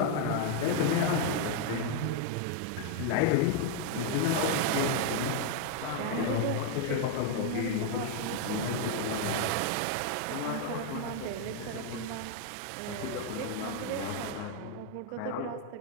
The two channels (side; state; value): both; different; correlation 0.00